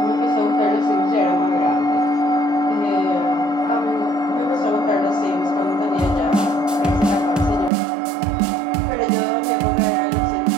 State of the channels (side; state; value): left; drops out; at 7.7 s